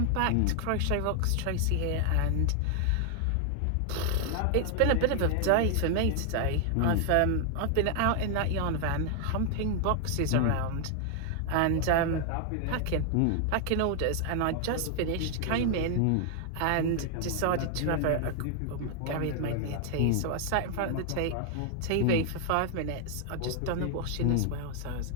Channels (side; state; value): both; different; correlation 0.00